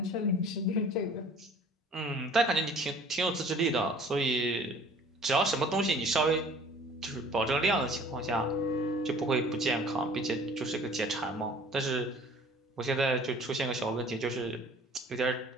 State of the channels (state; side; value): normal; both; correlation 0.50